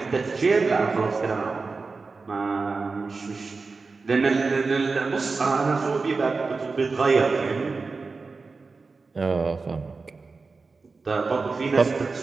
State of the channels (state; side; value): quieter; left; 4.2 dB